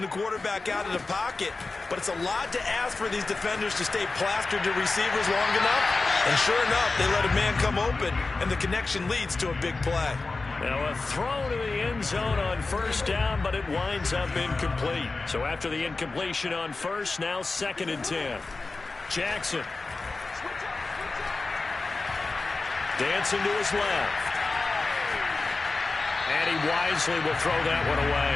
the quarterback out of the pocket. But it's a lot to ask for these defenders to stay plastered to receivers long enough. And sure enough, they let a man come open, and the connection leads to a big play. Now a throw to the end zone on 1st down, but it winds up incomplete. So after the incompletion on 1st, now 2nd and 10. Jackson. Dancing to his left. And he wisely will throw that one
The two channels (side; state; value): right; quieter; 3.7 dB